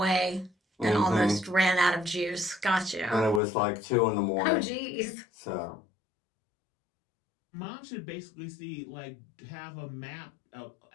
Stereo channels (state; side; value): drops out; right; at 3.4 s